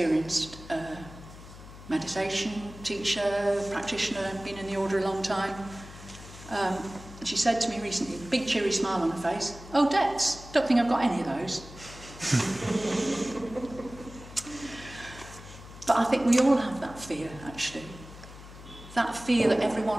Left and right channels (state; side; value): noise; left; hum, 16 dB below the sound